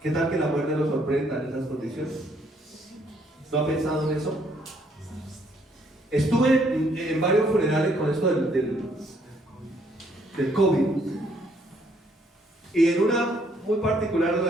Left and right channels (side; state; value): both; normal; correlation 0.68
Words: ¿Qué tal que la muerte lo sorprenda en esas condiciones? ¿No ha pensado en eso? Estuve en varios funerales con esto del COVID. Y en una muy particular en